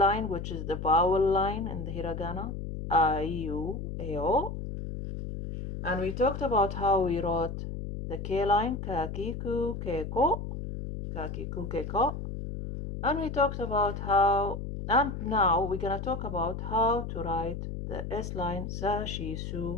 which is the vowel line in the Hiragana, A, U, A, O. And we talked about how we wrote the K line, kakiku, keiko, kakiku, keiko. And we talked about how, and now we're going to talk about how to write the S line, sa, shi,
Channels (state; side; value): noise; left; hum, 6 dB below the sound